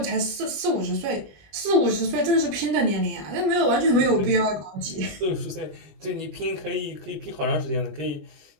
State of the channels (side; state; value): left; late; 20 ms